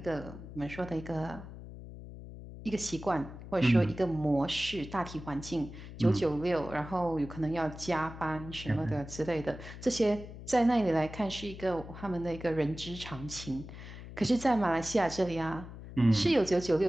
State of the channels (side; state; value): left; noise; hum, 13 dB below the sound